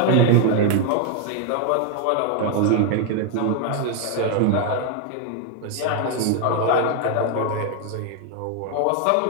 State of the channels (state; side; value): different; both; correlation 0.00